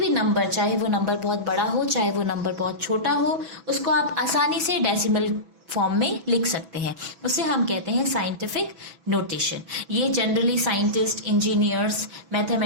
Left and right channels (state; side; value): late; left; 6.1 ms